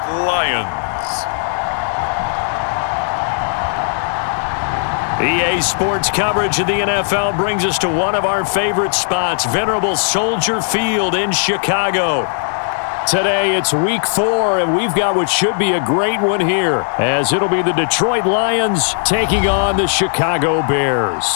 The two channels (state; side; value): silent; right; 68 dB below the other